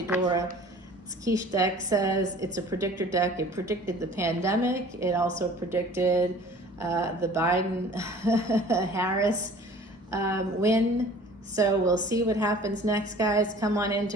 quiche deck says. It's a predictor deck. It predicted the pandemic. It also predicted the Biden-Harris win. So we'll see what happens next, guys. Come on into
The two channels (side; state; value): both; normal; correlation 0.47